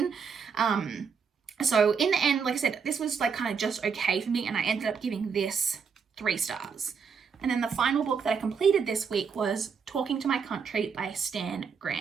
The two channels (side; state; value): left; quieter; 6.1 dB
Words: So in the end, like I said, this was like kind of just okay for me, and I ended up giving this 3 stars. And then the final book that I completed this week was Talking to My Country by Stan